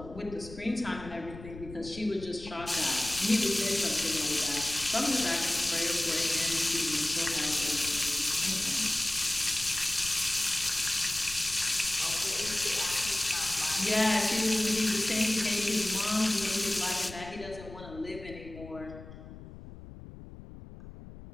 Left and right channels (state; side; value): noise; left; rumble, 15 dB below the sound